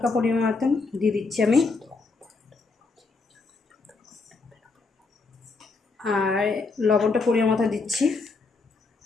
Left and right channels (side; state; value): right; quieter; 4.0 dB